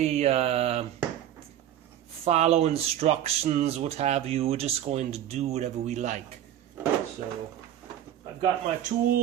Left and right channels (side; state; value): left; quieter; 11.3 dB